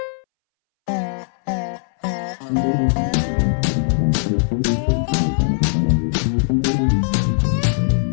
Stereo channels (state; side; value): silent; right; 64 dB below the other